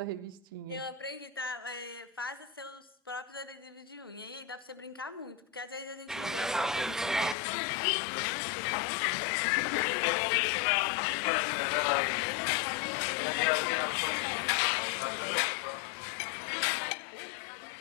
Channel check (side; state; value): right; drops out; at 7.4 s